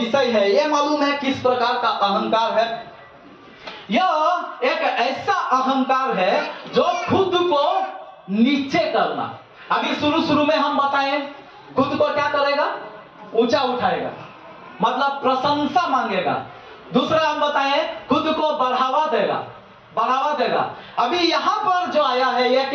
है, ये मालूम है किस प्रकार का अहंकार है? यह एक ऐसा अहंकार है जो खुद को नीचे करना। अभी शुरू में हम बताएं, खुद को क्या करेगा? ऊंचा उठाएगा, मतलब प्रशंसा मांगेगा। दूसरा हम बताएं, खुद को बढ़ावा देगा। अभी यहां पर जो आया है, यह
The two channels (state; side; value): identical; both; correlation 1.00